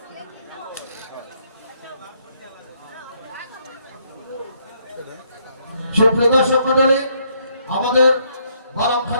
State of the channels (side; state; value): both; inverted; correlation -0.71